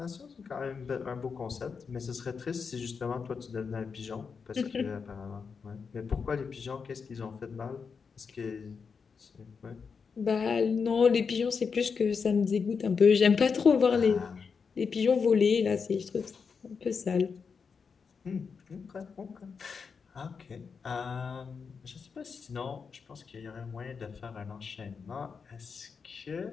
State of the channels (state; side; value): quieter; right; 5.6 dB